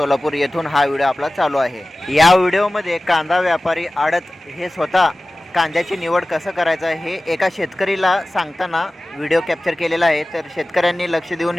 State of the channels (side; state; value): both; normal; correlation 0.97